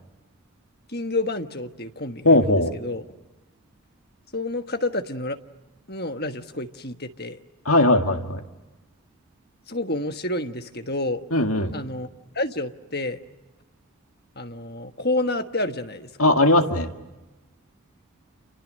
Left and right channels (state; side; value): normal; both; correlation -0.18